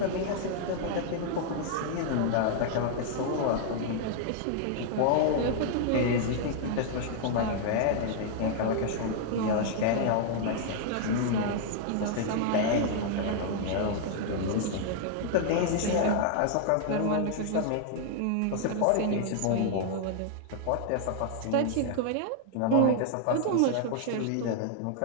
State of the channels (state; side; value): different; both; correlation -0.01